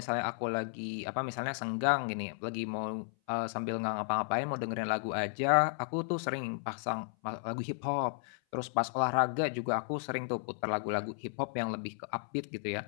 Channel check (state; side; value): silent; right; 55 dB below the other